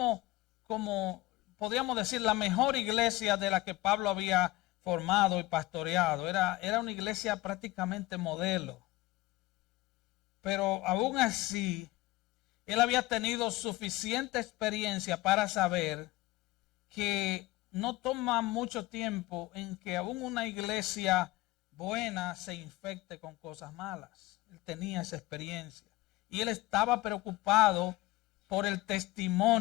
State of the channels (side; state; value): right; quieter; 19.4 dB